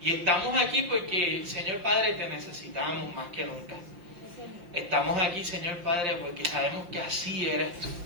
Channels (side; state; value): left; late; 5.7 ms